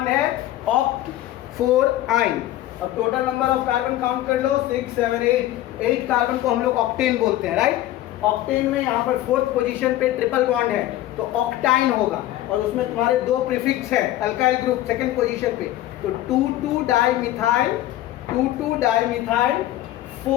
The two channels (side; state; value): right; quieter; 14.5 dB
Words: है, ऑक्ट 4 आइन। अब total number of carbon count कर लो, 6 7 8 कार्बन को हम लोग ऑक्टेन बोलते हैं, राइट। ऑक्टेन में यहाँ पर 4th पोजीशन पे ट्रिपल बॉन्ड है तो ऑक्टाइन होगा, और उसमें तुम्हारे 2 प्रीफिक्स है अल्काइल ग्रुप 2nd पोजीशन पे, तो 2,2-डाइमिथाइल